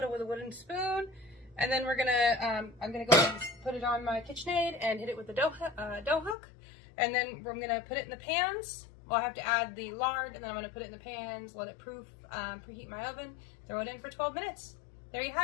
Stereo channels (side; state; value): right; drops out; at 6.4 s